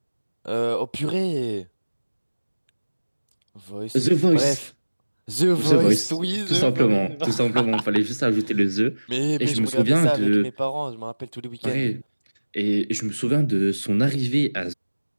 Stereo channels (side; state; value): both; inverted; correlation -1.00